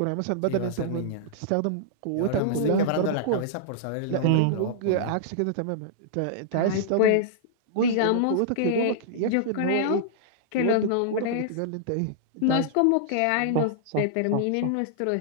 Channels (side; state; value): both; different; correlation -0.01